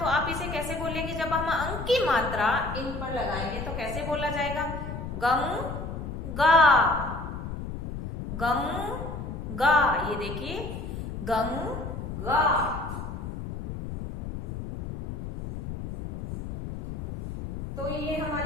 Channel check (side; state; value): left; noise; rumble, 7 dB below the sound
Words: आप इसे कैसे बोलेंगे? जब हम अंक की मात्रा इन पर लगाएंगे तो कैसे बोला जाएगा? गंगा, गंगा। ये देखिए गंगा। तो ये